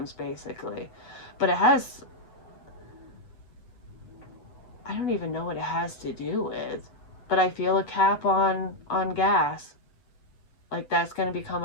basically. But I don't even know what it has to do with, but I feel a cap on gas, like that's going to become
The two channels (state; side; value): late; right; 8.2 ms